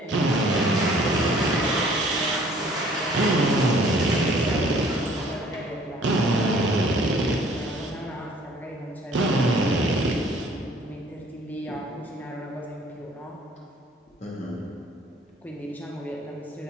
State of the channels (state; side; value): normal; both; correlation 0.56